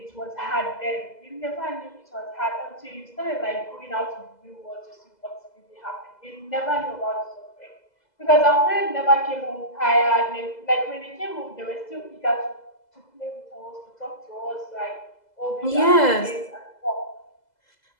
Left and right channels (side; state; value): right; late; 2.0 ms